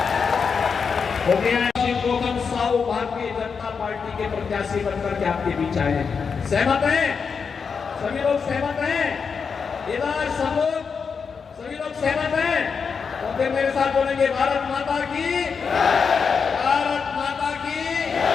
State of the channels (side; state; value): right; quieter; 5.8 dB